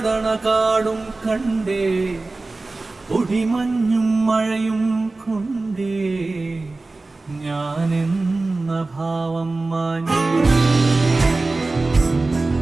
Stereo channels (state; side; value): quieter; left; 3.3 dB